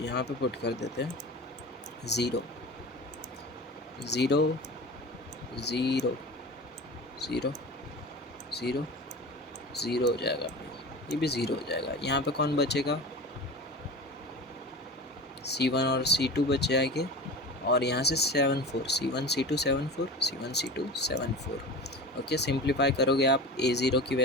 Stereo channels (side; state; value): both; normal; correlation 0.33